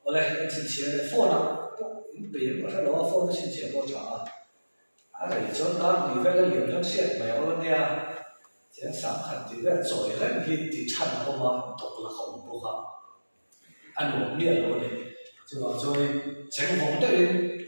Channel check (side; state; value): both; inverted; correlation -1.00